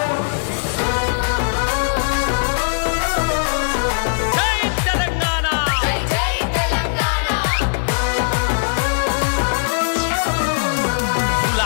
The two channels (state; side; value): silent; right; digital silence